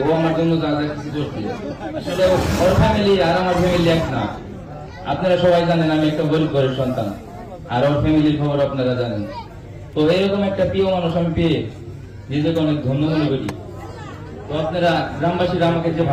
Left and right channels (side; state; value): both; identical; correlation 1.00